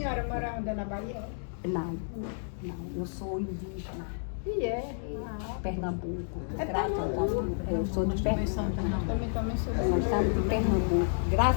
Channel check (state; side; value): silent; right; digital silence